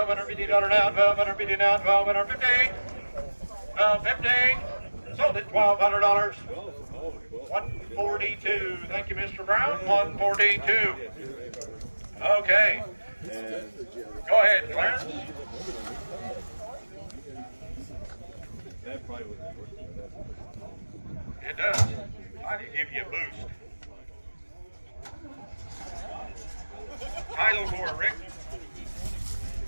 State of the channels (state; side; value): inverted; both; correlation -1.00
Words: down, $1,250 down, $1,250. $1,250. Sold it, $1,200. 142. Thank you, Mr. Brown. 142. Okay. Go ahead, Clarence. It does. I can give you a boost. Title for it, Rick.